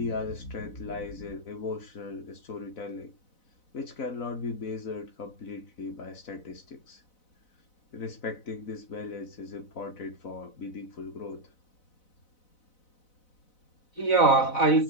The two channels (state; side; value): late; right; 4.0 ms